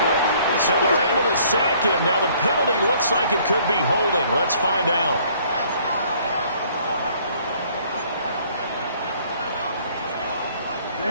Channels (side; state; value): both; inverted; correlation -0.60